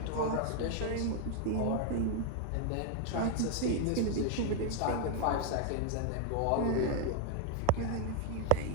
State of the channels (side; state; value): both; different; correlation 0.01